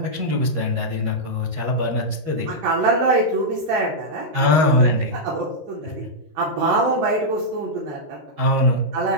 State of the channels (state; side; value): late; left; 13 ms